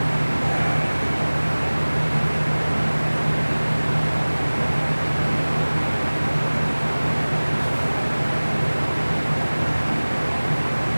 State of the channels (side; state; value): both; inverted; correlation -1.00